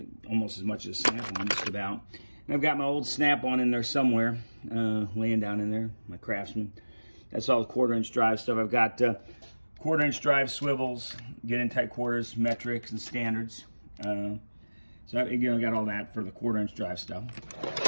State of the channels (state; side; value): inverted; both; correlation -1.00